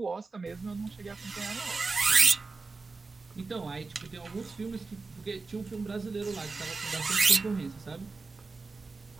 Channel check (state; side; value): quieter; left; 4.0 dB